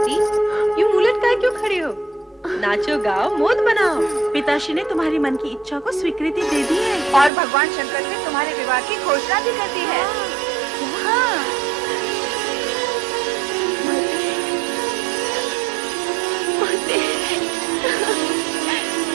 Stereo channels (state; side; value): drops out; left; at 7.3 s